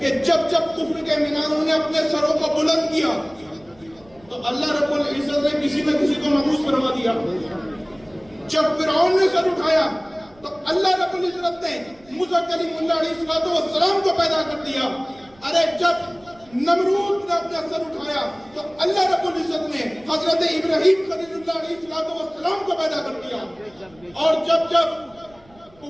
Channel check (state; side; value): noise; right; rumble, 28 dB below the sound